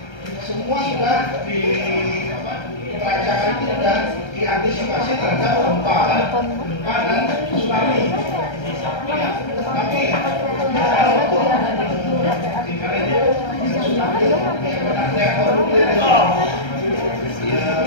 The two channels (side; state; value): right; late; 1.3 ms